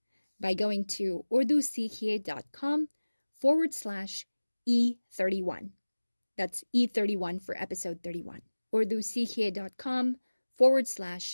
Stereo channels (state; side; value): inverted; both; correlation -1.00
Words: by going to urdusikhiye.com/E31. That's E31 for episode 31.